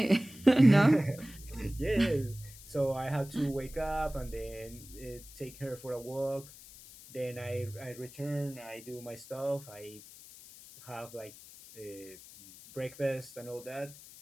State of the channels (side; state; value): left; noise; hiss, 18 dB below the sound